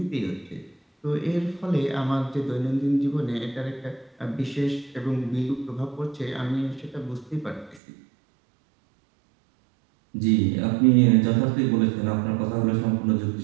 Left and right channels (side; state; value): left; drops out; at 7.8 s